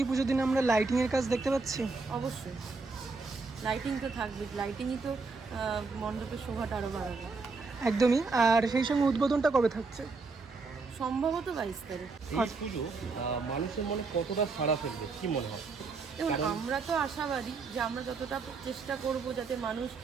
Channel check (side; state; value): left; quieter; 4.1 dB